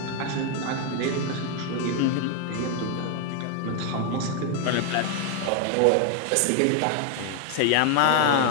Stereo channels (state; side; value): different; both; correlation 0.01